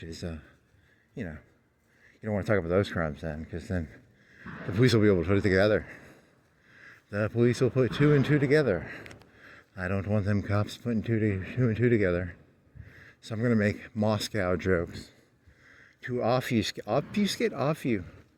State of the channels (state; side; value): identical; both; correlation 1.00